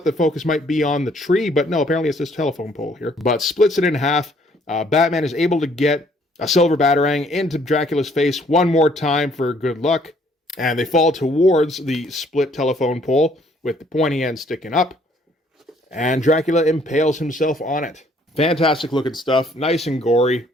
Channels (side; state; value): both; normal; correlation 0.63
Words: the focus might be on the tree, but no, apparently it's this telephone pole here. But splits it in half. Batman is able to get a silver batarang into Dracula's face one more time for good luck. And they fall towards the split telephone pole with the pointy end sticking up. And Dracula impales himself on it. Fantastic looking stuff. Nice and gory.